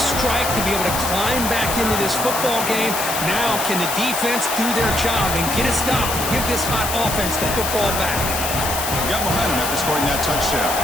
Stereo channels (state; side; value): noise; left; hiss, 3 dB below the sound